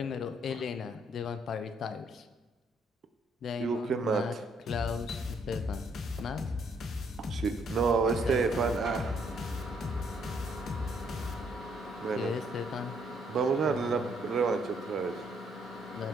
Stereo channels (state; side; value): normal; both; correlation 0.69